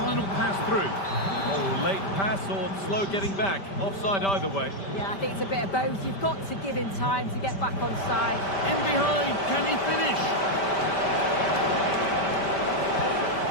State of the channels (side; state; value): right; late; 5.1 ms